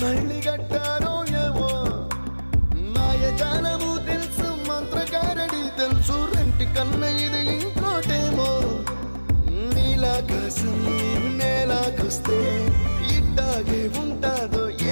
కట్టారో ఏమో మాయజాలము తెలుసు మంత్రకారడి తెలుసు రెంటి కన్న ఇది ఇంకోటేమో నీలాకాశం నేలాకొస్తే ఇట్టాగే ఉంటాదో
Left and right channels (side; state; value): both; inverted; correlation -1.00